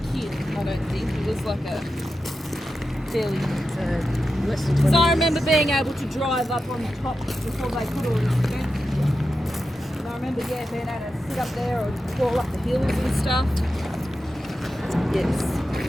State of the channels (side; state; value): both; normal; correlation 0.90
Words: kid, I don't think. It was like a fairly... Because I remember being able to drive up on the top before they put all this fence. And I remember, yeah, being able to sit up there or crawl up the hills and stuff. Yes,